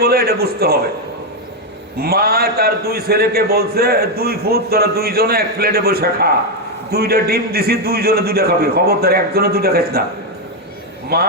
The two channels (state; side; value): normal; both; correlation 0.04